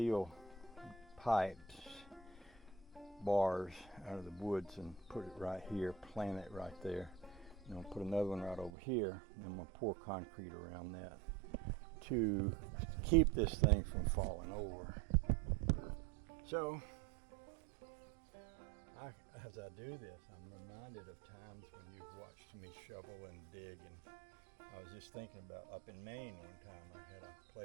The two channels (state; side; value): drops out; left; at 8.7 s